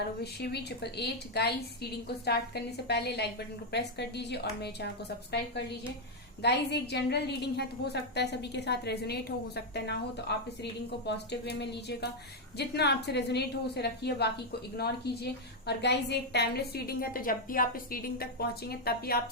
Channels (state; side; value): normal; both; correlation 0.00